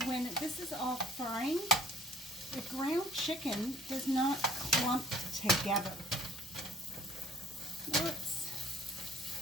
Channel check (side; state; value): both; normal; correlation 0.54